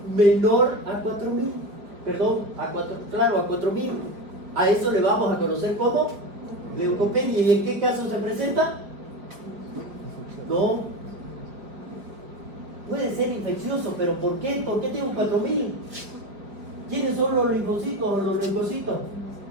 menor a 4.000. Perdón, a 4.000. A eso le vamos a conocer como leucopenia. ¿Y en qué caso se presenta? No. Puede ser infeccioso, pero ¿por qué? ¿Por qué tengo 4.000? ¿Quiénes son los linfocitos o los leucocitos?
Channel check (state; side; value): late; left; 5.0 ms